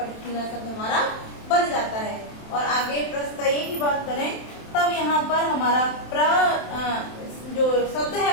शब्द हमारा बन जाता है। और आगे प्रस्तय की बात करें तब यहाँ पर हमारा जो शब्द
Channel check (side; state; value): right; late; 27 ms